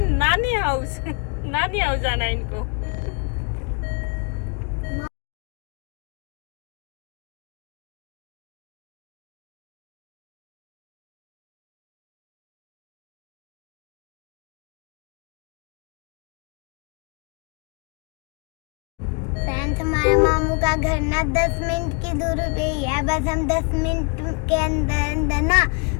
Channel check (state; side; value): quieter; right; 34.7 dB